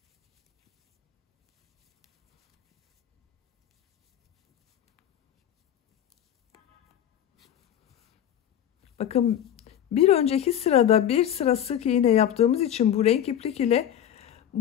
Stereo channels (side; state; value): right; quieter; 10.3 dB